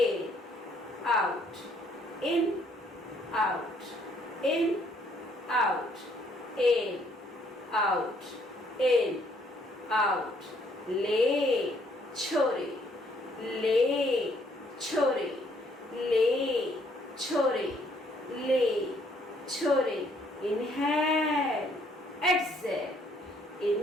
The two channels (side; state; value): both; normal; correlation 0.66